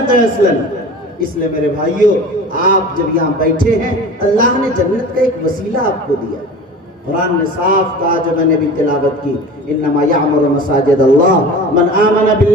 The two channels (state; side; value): normal; both; correlation 0.37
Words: ہے اصلاً. اس لیے میرے بھائیوں, آپ جب یہاں بیٹھے ہیں اللہ نے جنت کا ایک وسیلہ آپ کو دیا. قرآن نے صاف کہا, جو میں نے بھی تلاوت کی, انما یعمر مساجد اللہ من آمن